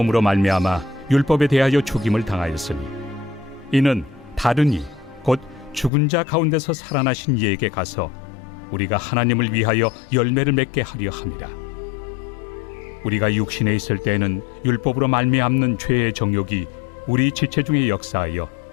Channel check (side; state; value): right; drops out; at 5.9 s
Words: 말미암아 율법에 대하여 죽임을 당하였으니 이는 다른 이 곧 죽은 자 가운데서 살아나신 이에게 가서 우리가 하나님을 위하여 열매를 맺게 하려 함이라. 우리가 육신에 있을 때에는 율법으로 말미암는 죄의 정욕이 우리 지체 중에 역사하여